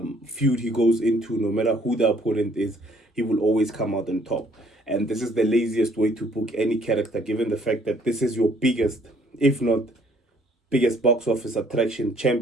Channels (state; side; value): normal; both; correlation 0.62